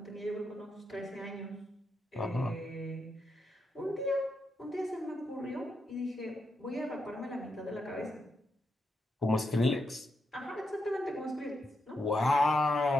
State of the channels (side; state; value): both; normal; correlation 0.83